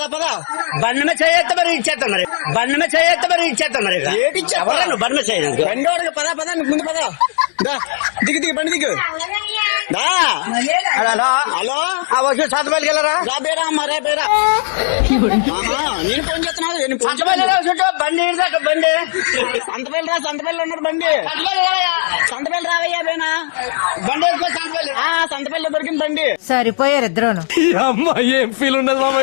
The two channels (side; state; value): right; silent; digital silence